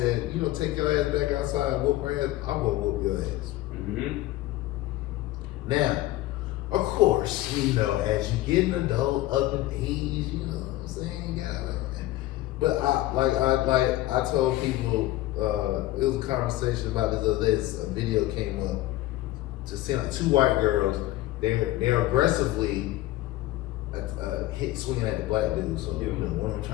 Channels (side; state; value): right; quieter; 16.4 dB